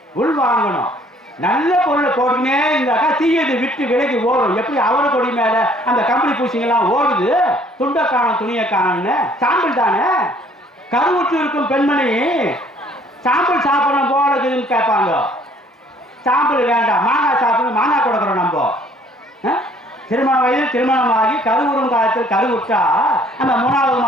உள்வாங்கணும். நல்ல பொருளை போட்டுக்கினே இருந்தாக்கா தீயது விட்டு விலைக்கு ஓடும். எப்படி அவரை கொடி மேல அந்த கம்பளி பூசிங்கெல்லாம் ஓடுது, துண்டை காணும் துணியை காணும்னு. சாம்பிள் தானே. கருவுற்று இருக்கும் பெண்மணி சாம்பிள் சாப்பிடணும் போல இருக்குதுன்னு கேட்பாங்க. சாம்பிள் வேண்டாம், மாங்காய் சாப்பிடணும், மாங்காய் கொடுக்குறோம். நம்ம திருமண வயதில் திருமணமாகி கருவுறும் காலத்தில் கருவுற்றா அந்த 3வது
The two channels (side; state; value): both; normal; correlation 0.59